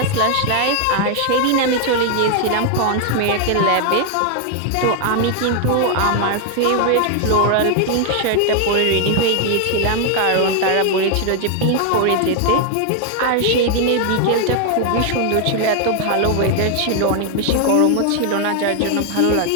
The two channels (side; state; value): both; different; correlation 0.00